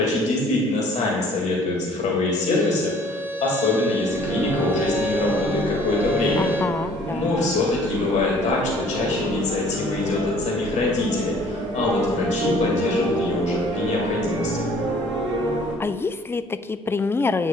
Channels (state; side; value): normal; both; correlation 0.55